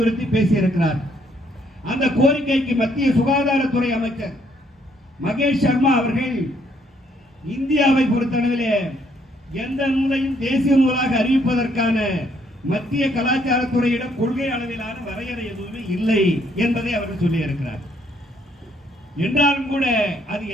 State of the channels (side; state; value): both; normal; correlation 0.69